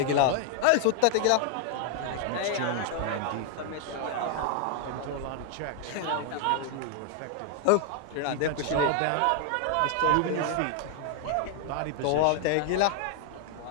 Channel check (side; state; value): both; different; correlation 0.00